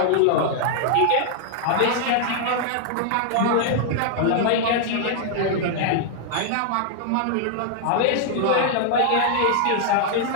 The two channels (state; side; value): different; both; correlation -0.01